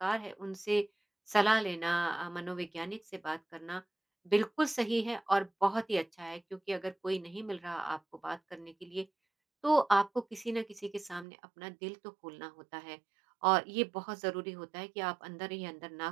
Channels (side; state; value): left; drops out; at 11.2 s